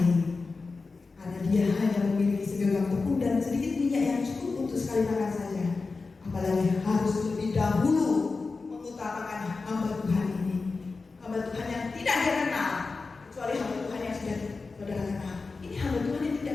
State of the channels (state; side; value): quieter; right; 4.1 dB